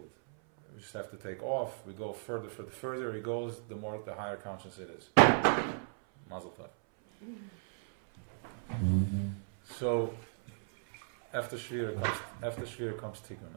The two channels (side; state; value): left; silent; 54 dB below the other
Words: We just have to take off. We go further. The further it goes, the higher conscious it is. Mazel tov. So after Shiur comes